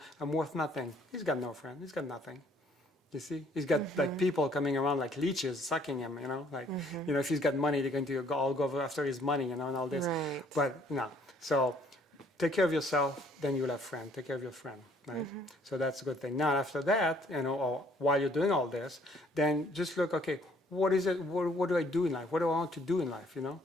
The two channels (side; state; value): both; normal; correlation 0.62